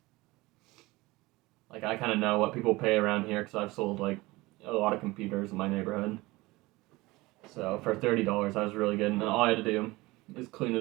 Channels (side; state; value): left; quieter; 21.1 dB